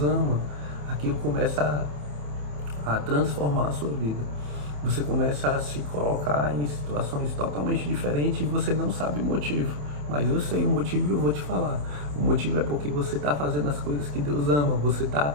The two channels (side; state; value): left; late; 27 ms